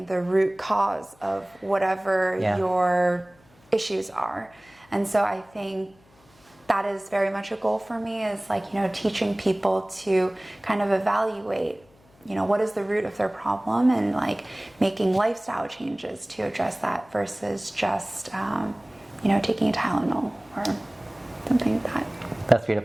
the root cause of whatever your issues are. And so I think that is very much a goal for me, is like, you know, teaching people to kind of evaluate, you know, what is the root of their problem, and like making lifestyle changes to address that versus just, you know, taking a Tylenol or something like that. That's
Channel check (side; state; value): left; noise; hum, 30 dB below the sound